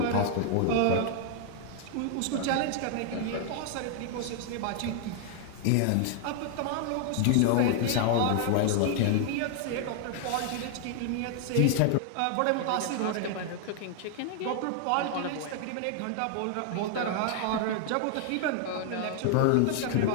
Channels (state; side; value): different; both; correlation 0.00